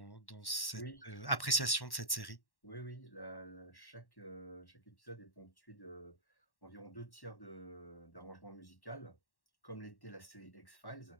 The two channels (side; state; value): right; late; 1.1 ms